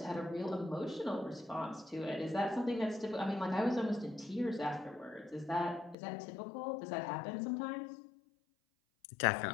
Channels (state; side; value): drops out; right; at 6.0 s